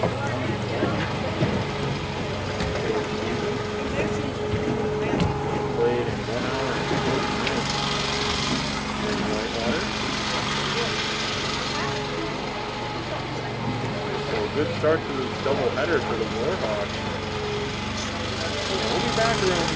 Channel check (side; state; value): both; identical; correlation 1.00